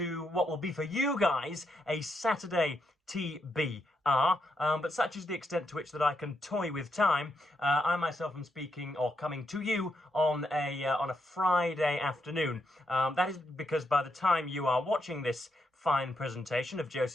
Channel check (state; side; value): normal; both; correlation 0.81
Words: what will be for you guys a Saturday TBR, but such is the extent to which that I can toy with time. I myself am speaking or coming to you on a Friday afternoon. That is because by the time you are watching this fine presentation of